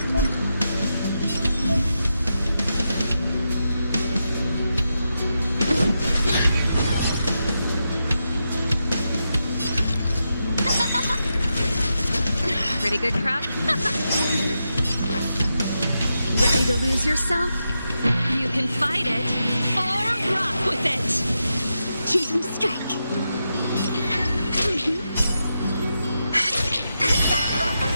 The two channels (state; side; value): inverted; both; correlation -0.87